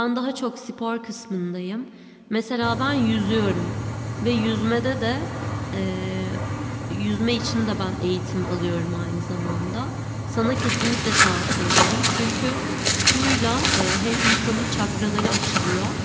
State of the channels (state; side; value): identical; both; correlation 1.00